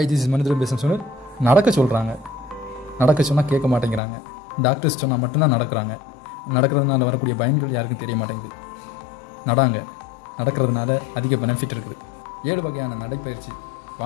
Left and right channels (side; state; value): right; drops out; at 4.0 s